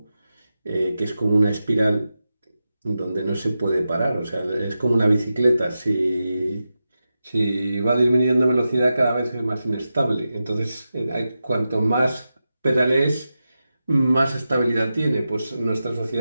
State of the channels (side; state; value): both; inverted; correlation -0.91